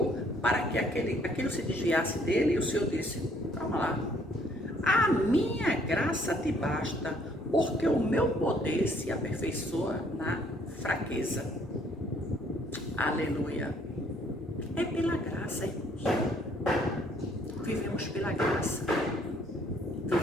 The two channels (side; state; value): both; normal; correlation 0.63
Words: para que aquilo se desviasse dele, e o Senhor disse, calma lá, a minha graça te basta, porque o meu poder se aperfeiçoa na fraqueza. Aleluia. É pela graça, irmãos. Vivemos pela graça.